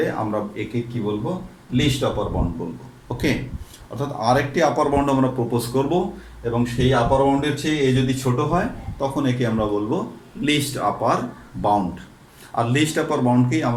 আমরা একে কি বলবো, লিস্ট আপার বাউন্ড বলবো। ওকে, অর্থাৎ আরেকটি আপার বাউন্ড আমরা প্রপোজ করব, এবং সেই আপার বাউন্ডের চেয়ে এ যদি ছোট হয় তখন একে আমরা বলবো লিস্ট আপার বাউন্ড। আর লিস্ট আপার বাউন্ডকেই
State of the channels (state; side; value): identical; both; correlation 1.00